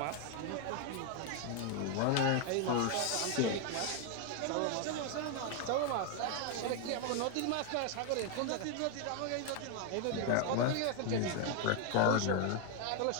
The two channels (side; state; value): both; different; correlation 0.01